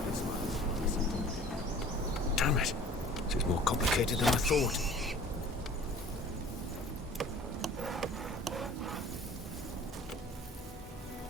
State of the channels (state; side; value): normal; both; correlation 0.47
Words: Damn it. This is more complicated than I thought.